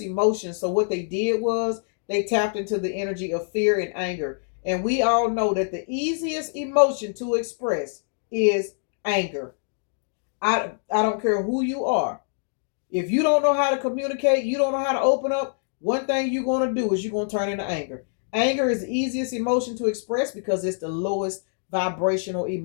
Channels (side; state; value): right; silent; digital silence